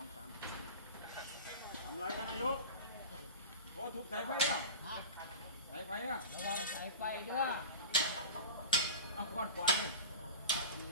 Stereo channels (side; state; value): both; inverted; correlation -0.31